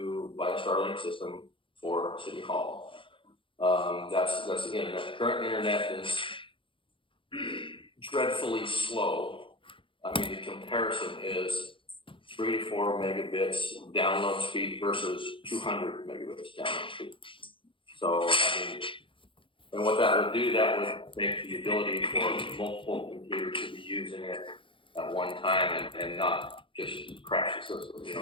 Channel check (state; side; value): late; right; 0.25 ms